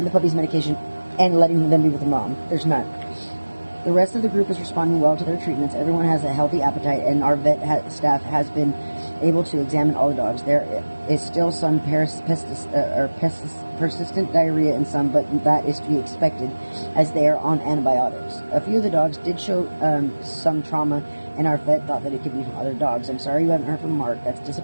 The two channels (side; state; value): both; inverted; correlation -1.00